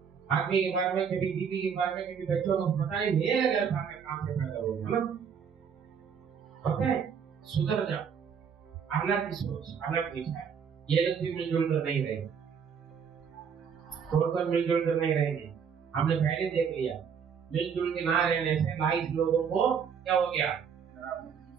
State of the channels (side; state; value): left; quieter; 7.0 dB